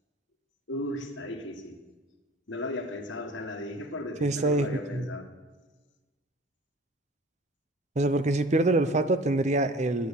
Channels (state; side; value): normal; both; correlation 0.44